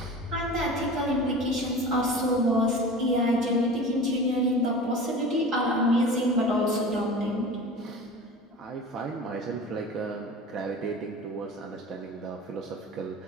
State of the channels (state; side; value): normal; both; correlation 0.36